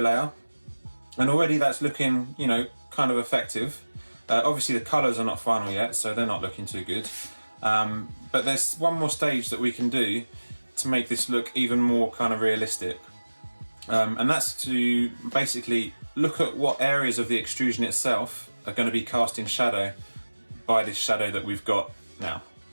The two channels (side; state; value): both; inverted; correlation -1.00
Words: and already that's looking, kind of effective. Obviously the colours are not final yet, so they're not looking too good. But there's one more stage that we can do to make this look even more kind of realistic. And that's to basically look at what areas of the extrusion itself are going to be cast in shadow by this shadow that we've got now.